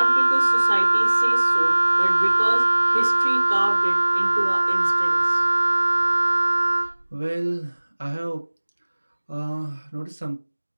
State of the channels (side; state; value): both; inverted; correlation -1.00